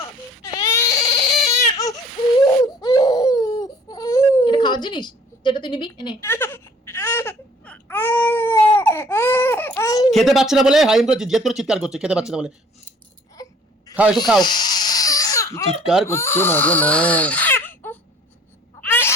এটা খাওয়ার জিনিস যেটা তুই নিবি, এনে। খেতে পাচ্ছে না বলে হাইম করে জেদ করে চিৎকার করছে, খেতে পাচ্ছে না বলে। খাও, একটু খাও। চিৎকার করছে মা গো মা।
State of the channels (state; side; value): normal; both; correlation 0.54